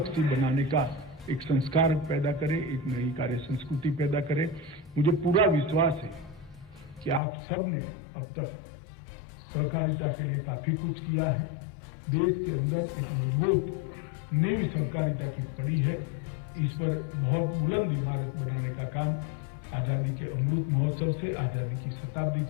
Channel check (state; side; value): drops out; right; at 7.2 s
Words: बनाने का एक संस्कार पैदा करें, एक नई कार्य संस्कृति पैदा करें। मुझे पूरा विश्वास है कि आप सब ने अब तक सहकारिता के लिए काफी कुछ किया है। देश के अंदर एक मजबूत नींव सहकारिता की पड़ी है। इस पर बहुत बुलंद इमारत बनाने का काम आजादी के अमृत महोत्सव से, आजादी की शताब्दी